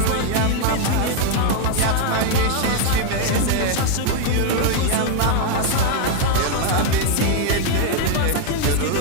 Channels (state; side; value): different; both; correlation 0.01